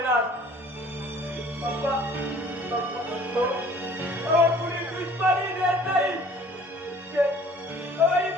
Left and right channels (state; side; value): normal; both; correlation 0.52